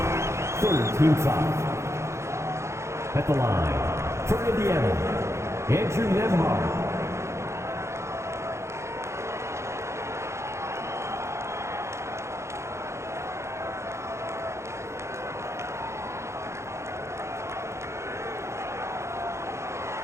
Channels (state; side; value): late; left; 0.13 ms